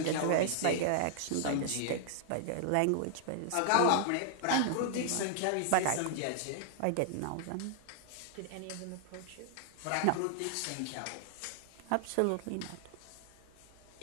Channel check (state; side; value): different; both; correlation 0.00